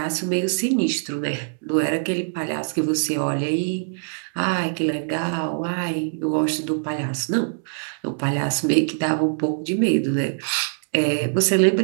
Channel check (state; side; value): silent; left; digital silence